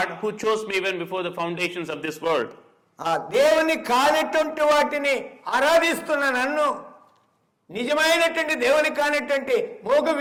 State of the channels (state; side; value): identical; both; correlation 1.00